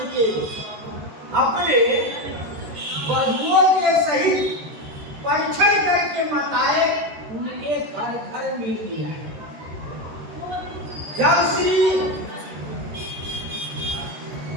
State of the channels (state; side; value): late; left; 14 ms